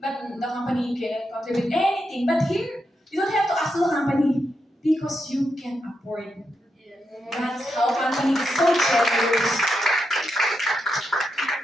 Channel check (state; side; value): normal; both; correlation 0.84